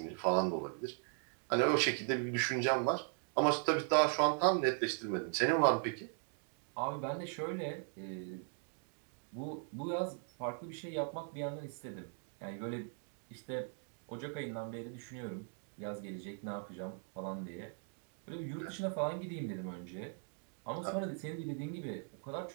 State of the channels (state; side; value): silent; left; 52 dB below the other